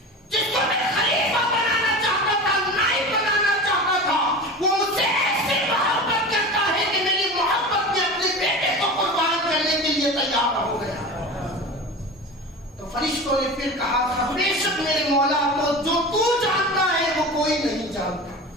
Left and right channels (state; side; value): normal; both; correlation 0.32